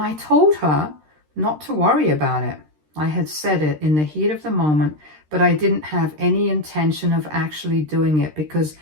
told her not to worry about it. I had said it in the heat of the moment, but I didn't have any intention of actually doing it, because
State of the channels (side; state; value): left; late; 13 ms